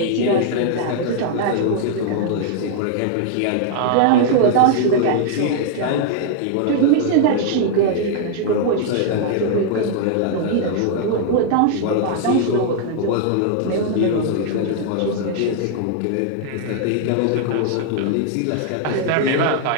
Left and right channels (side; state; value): both; different; correlation 0.00